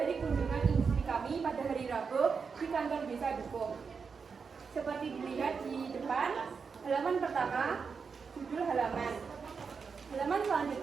kunjungan industri kami pada hari Rabu di kantor Desa Dukuh. Seperti dilihat di depan, halaman pertama, judul halaman. Halaman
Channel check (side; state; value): left; quieter; 5.5 dB